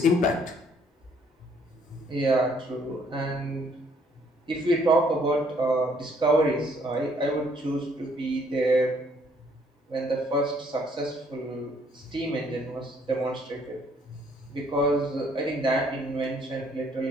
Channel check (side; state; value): both; normal; correlation 0.64